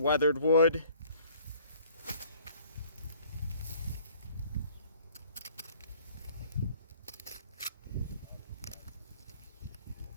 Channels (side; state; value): both; inverted; correlation -0.55